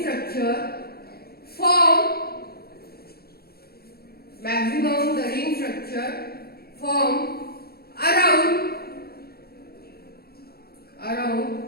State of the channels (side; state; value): right; late; 0.45 ms